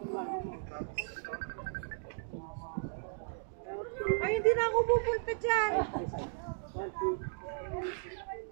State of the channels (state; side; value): silent; left; digital silence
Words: Ay, hindi na ako pupunta dyan.